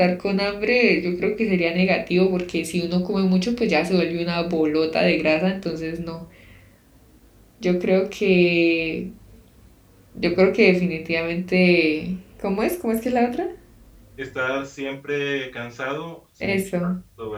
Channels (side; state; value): both; identical; correlation 1.00